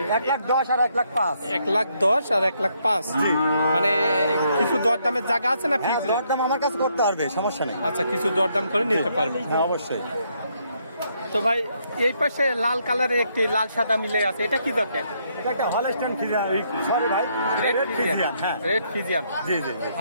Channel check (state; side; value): inverted; both; correlation -0.73